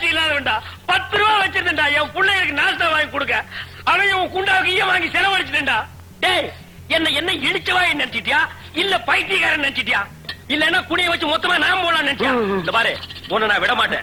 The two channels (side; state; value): both; identical; correlation 1.00